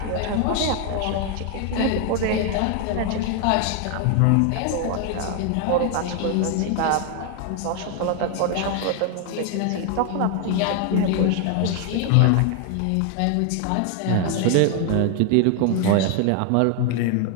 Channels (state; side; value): different; both; correlation 0.01